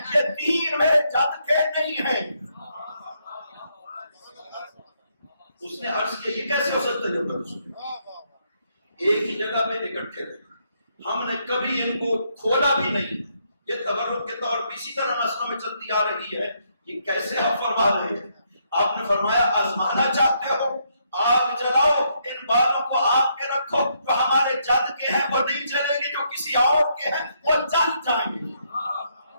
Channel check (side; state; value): both; inverted; correlation -0.75